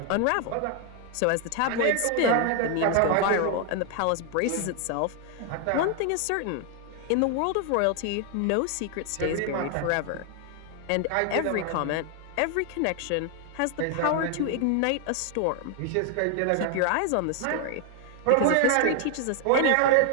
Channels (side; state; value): both; different; correlation 0.00